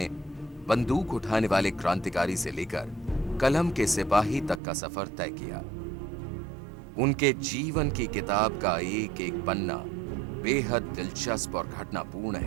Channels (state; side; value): drops out; left; at 4.6 s